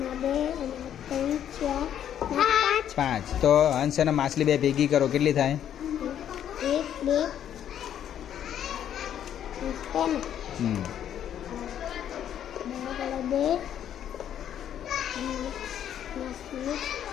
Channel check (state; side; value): quieter; right; 10.1 dB